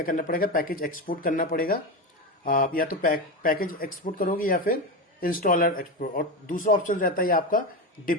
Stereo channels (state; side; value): normal; both; correlation 0.17